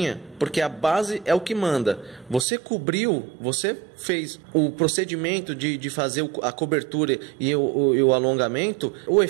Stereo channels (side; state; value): left; drops out; at 2.5 s